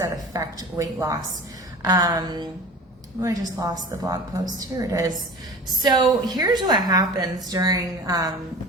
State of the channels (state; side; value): normal; both; correlation 0.38